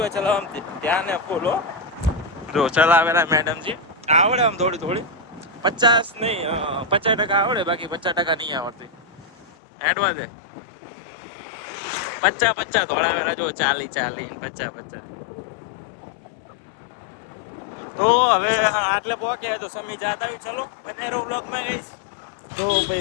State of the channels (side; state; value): right; drops out; at 9.5 s